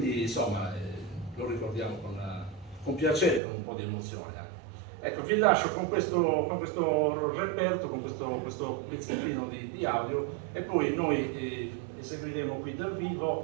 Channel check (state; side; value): drops out; left; at 3.4 s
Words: insomma lo ricordiamo con piacere, con un po' di emozione anche. Ecco, vi lascio con questo reperto, con questo pezzettino di audio, e poi noi eseguiremo qui dal